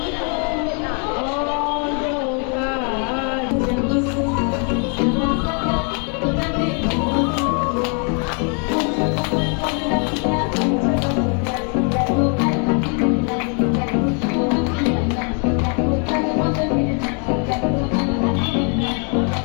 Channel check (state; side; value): quieter; right; 38.8 dB